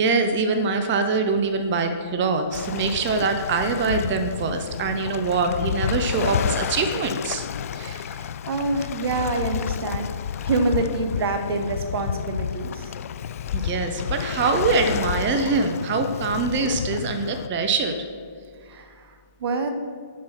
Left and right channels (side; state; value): both; inverted; correlation -0.39